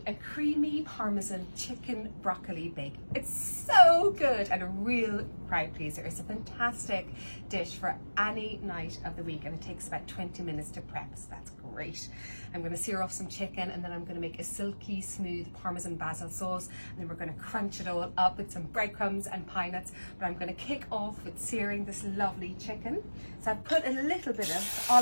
a creamy Parmesan chicken broccoli bake. It's so good and a real crowd pleaser. It's a fantastic dish for any night of the week, and it takes about 20 minutes to prep, so that's great. I'm going to sear off some chicken, and then I'm going to make a silky smooth Parmesan Basil sauce, and then we're going to crunch it all up with some breadcrumbs and pine nuts. But I'm going to kick off with searing this lovely chicken. So I've put a little bit of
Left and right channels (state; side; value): inverted; both; correlation -1.00